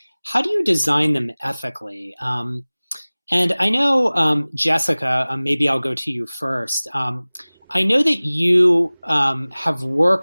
do you design them ethically? And I know, Jessica, maybe I'll go to you first. I know that you have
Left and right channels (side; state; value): both; inverted; correlation -0.99